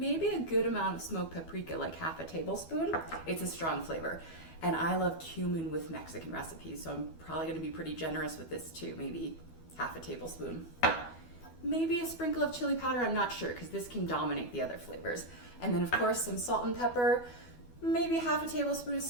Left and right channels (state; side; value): late; right; 12 ms